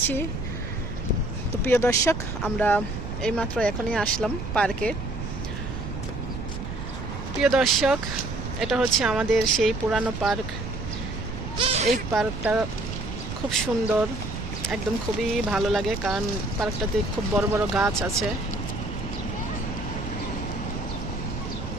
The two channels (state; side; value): noise; right; rumble, 7 dB below the sound